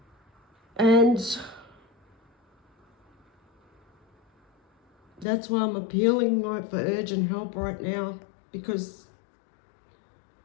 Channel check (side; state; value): right; drops out; at 5.2 s